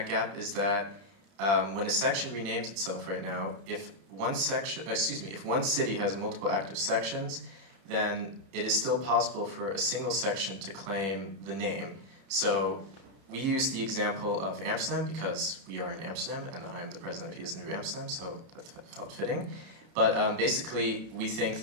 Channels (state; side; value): late; left; 31 ms